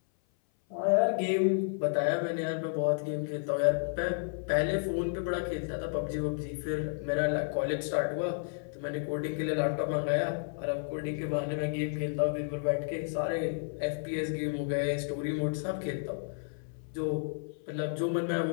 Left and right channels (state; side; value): silent; right; 57 dB below the other